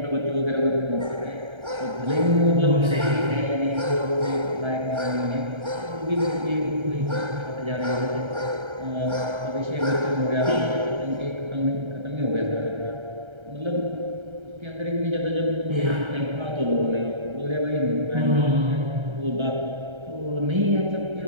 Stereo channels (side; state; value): left; late; 1.3 ms